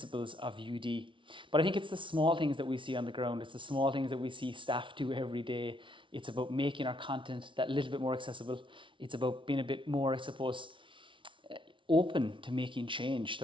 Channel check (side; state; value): left; late; 0.25 ms